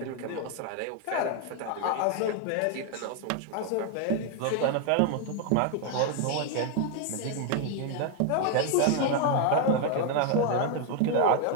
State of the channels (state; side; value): different; both; correlation 0.00